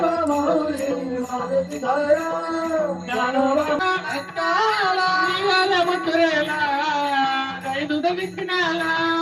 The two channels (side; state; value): both; identical; correlation 1.00